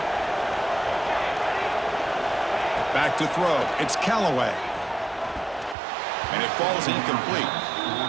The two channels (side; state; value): left; drops out; at 5.8 s